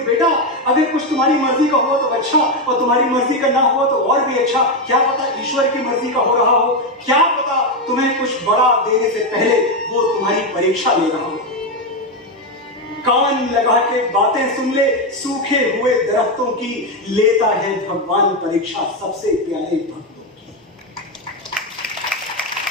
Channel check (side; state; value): both; normal; correlation 0.08